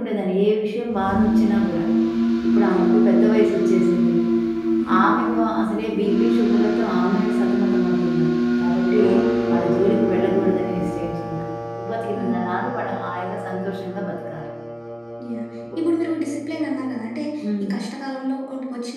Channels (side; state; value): both; identical; correlation 1.00